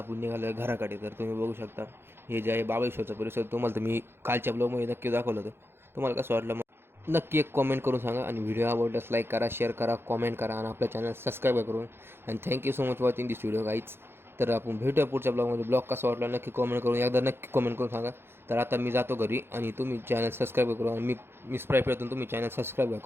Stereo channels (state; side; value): late; left; 0.11 ms